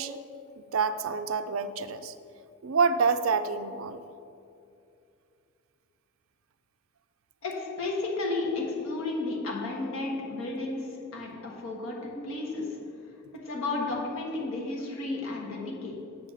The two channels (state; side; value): normal; both; correlation -0.12